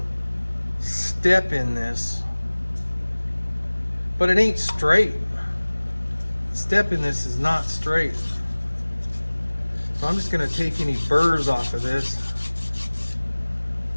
step in this, but it ain't straight. The step in this is not straight. So I'm just gonna take any burrs off of this.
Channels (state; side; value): inverted; both; correlation -1.00